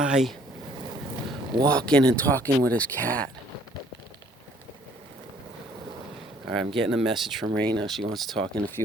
walking and talking with his cat. All right, I'm getting a message from Raina. She wants to talk in a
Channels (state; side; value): normal; both; correlation 0.60